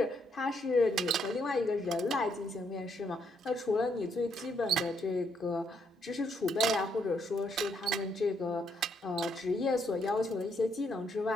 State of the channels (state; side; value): normal; both; correlation 0.74